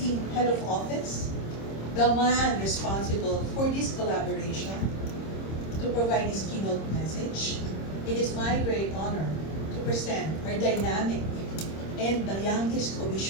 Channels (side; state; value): right; late; 26 ms